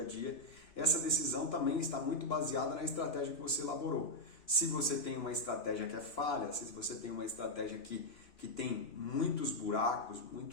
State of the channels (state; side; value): late; right; 3.0 ms